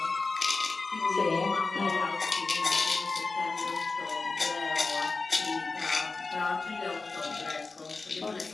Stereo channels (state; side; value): quieter; right; 3.9 dB